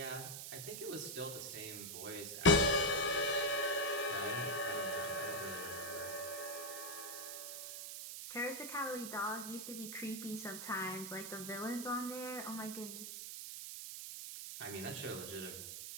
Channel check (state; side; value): noise; right; hiss, 7 dB below the sound